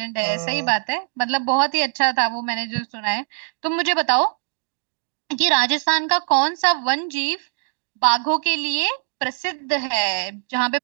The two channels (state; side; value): silent; left; digital silence